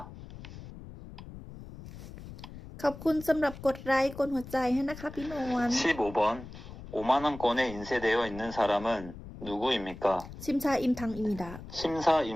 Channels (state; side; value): noise; left; rumble, 14 dB below the sound